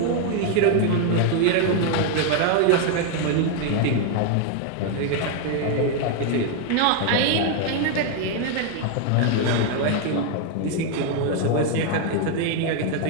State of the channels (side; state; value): both; different; correlation 0.00